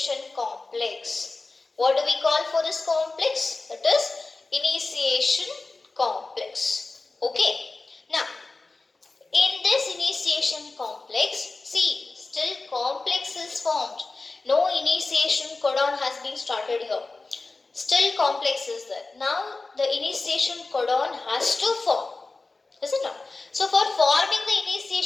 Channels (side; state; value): right; quieter; 3.6 dB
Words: complex. What do we call for this complex? That is initiation complex. Now, in this initiation complex, see, still complex is formed. No initiation codon has been started here. Still complex is there. Now, the initiation codon has to form. Is it not? So, for forming the